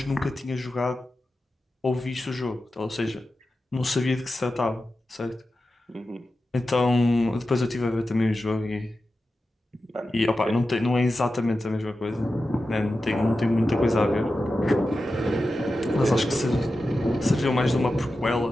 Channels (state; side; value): normal; both; correlation 0.92